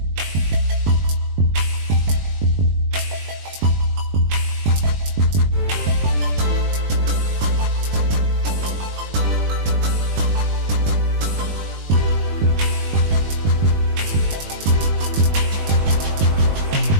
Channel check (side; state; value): left; late; 20 ms